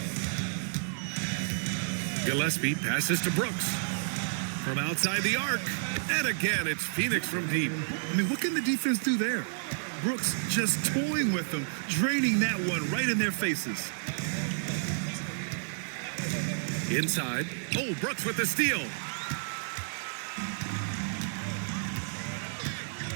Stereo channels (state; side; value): silent; left; 57 dB below the other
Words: Gillespie passes to Brooks. From outside the arc. And again, it's Phoenix from deep. I mean, what can the defense do there? Brooks just toying with them, draining that one right in their faces. Inside. Oh, Brooks with the steal.